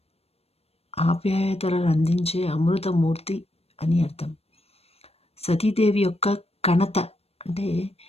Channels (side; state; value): right; late; 0.29 ms